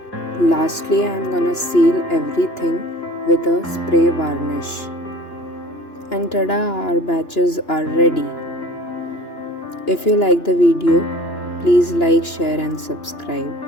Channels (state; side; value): late; right; 2.9 ms